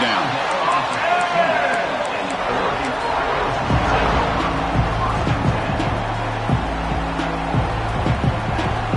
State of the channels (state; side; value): identical; both; correlation 1.00